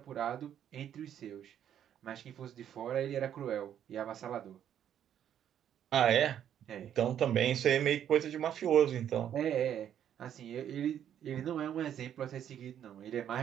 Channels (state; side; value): quieter; left; 9.9 dB